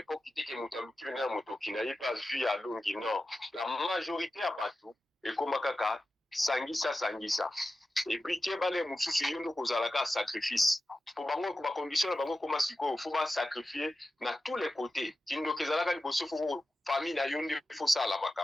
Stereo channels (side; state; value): both; normal; correlation 0.92